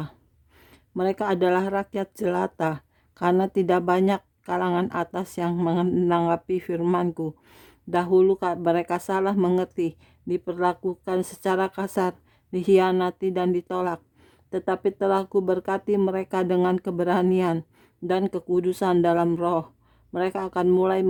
Mereka adalah rakyat jelata, karena tidak banyak kalangan atas yang menanggapi firman-Ku. Dahulu mereka salah mengerti, diperlakukan secara kasar, dikhianati dan ditolak. Tetapi telah Kuberkati mereka dengan keberanian dan kekudusan dalam roh. Mereka akan mulai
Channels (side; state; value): both; identical; correlation 1.00